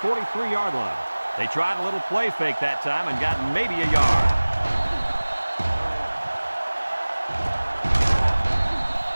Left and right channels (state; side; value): inverted; both; correlation -1.00